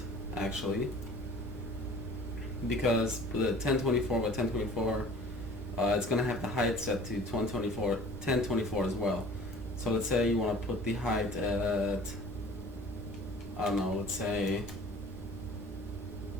actually, because the 1024 by 1024, it's going to have the height set to 1024 as well. So let's say you want to put the height at, I don't know, let's say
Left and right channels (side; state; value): both; normal; correlation 0.47